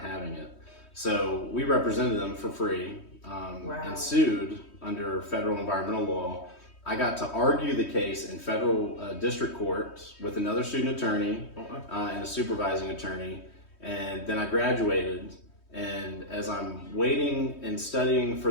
having it. So we represented them for free and sued under federal environmental law. I got to argue the case in federal district court with another student attorney and a supervising attorney, and then I graduated. And as I'm waiting and studying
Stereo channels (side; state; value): right; late; 3.1 ms